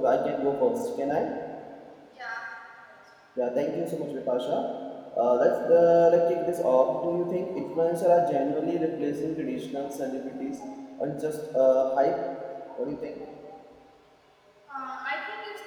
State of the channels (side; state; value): both; identical; correlation 1.00